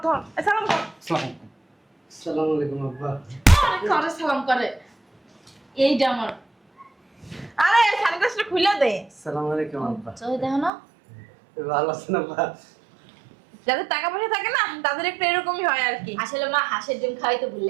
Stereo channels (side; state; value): left; drops out; at 10.7 s